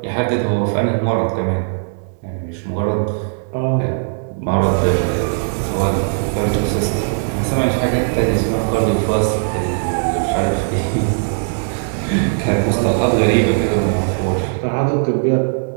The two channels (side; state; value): left; silent; digital silence